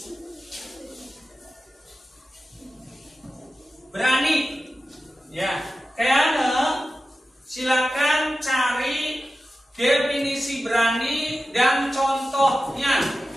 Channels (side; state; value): both; normal; correlation 0.94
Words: Berani. Ya, kayaknya silakan cari definisi berani dan contohnya.